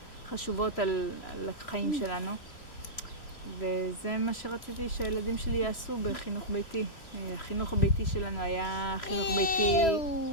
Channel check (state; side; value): late; right; 3.0 ms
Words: חשובות על החיים שלנו. וזה מה שרציתי שהילדים שלי יעשו בחינוך ביתי. החינוך הביתי שלנו היה חינוך ביתי